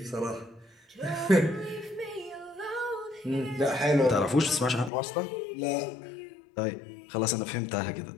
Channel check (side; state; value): right; drops out; at 4.9 s